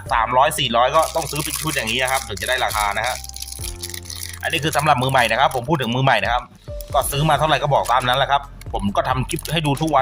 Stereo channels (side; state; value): both; identical; correlation 1.00